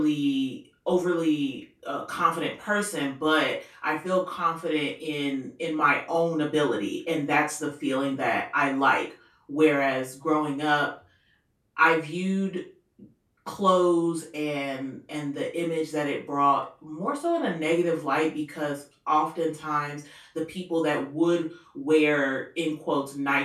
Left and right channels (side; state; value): both; identical; correlation 1.00